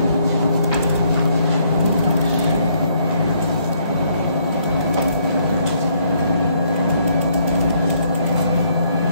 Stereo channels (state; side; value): inverted; both; correlation -0.68